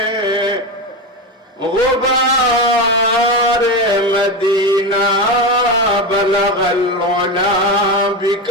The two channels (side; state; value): both; normal; correlation 0.17